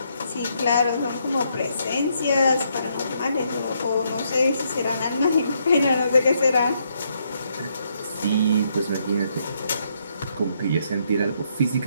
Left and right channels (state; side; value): inverted; both; correlation -0.75